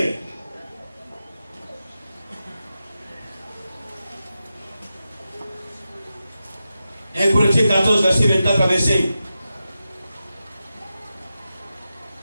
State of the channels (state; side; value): inverted; both; correlation -0.91